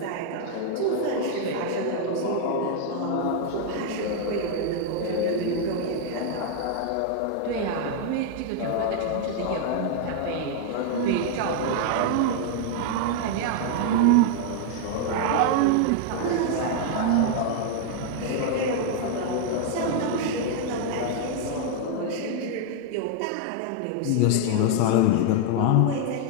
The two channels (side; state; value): both; different; correlation 0.00